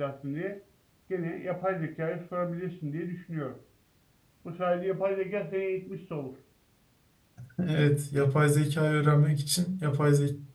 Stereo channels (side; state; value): both; identical; correlation 1.00